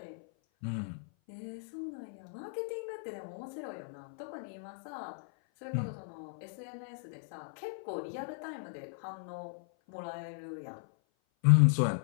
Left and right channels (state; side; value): silent; right; 54 dB below the other